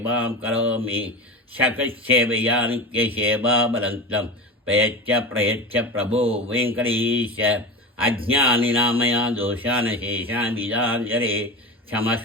करोमि शकसेवया नित्यसेवाबलन्तं प्रयच्छ प्रयच्छ प्रभो वेङ्कटेश अज्ञानिनामया दोषान् शेषान् विदाञ्जले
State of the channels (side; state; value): both; normal; correlation 0.26